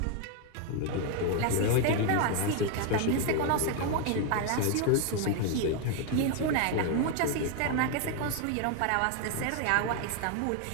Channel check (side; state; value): both; different; correlation 0.01